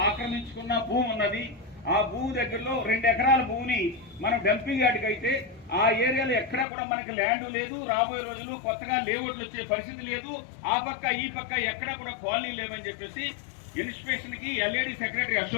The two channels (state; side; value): drops out; right; at 6.7 s